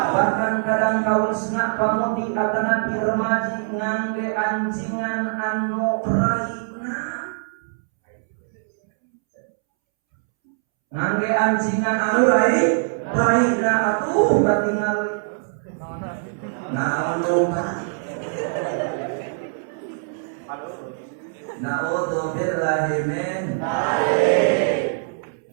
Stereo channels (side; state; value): left; silent; 64 dB below the other